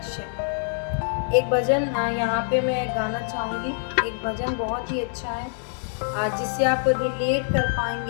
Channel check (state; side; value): silent; right; 62 dB below the other